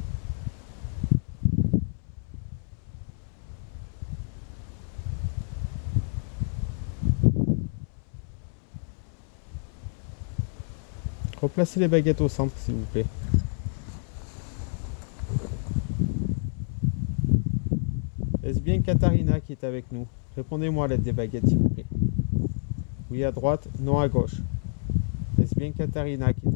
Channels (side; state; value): right; silent; 59 dB below the other